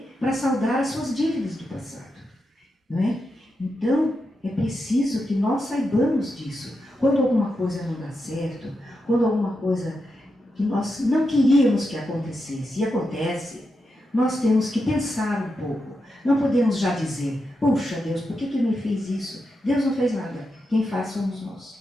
Para saldar as suas dívidas do passado. Não é? Então, é preciso que nós saibamos disso. Quando alguma coisa não dá certo, quando alguma coisa que nós não queríamos que acontecesse, e acontece, nós temos que pensar um pouco. Não podemos já dizer, puxa Deus, por que me fez isso? Deus não fez nada, quem faz somos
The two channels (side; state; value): both; normal; correlation 0.87